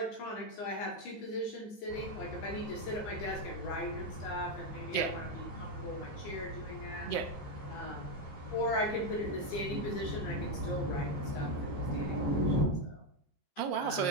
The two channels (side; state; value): right; late; 15 ms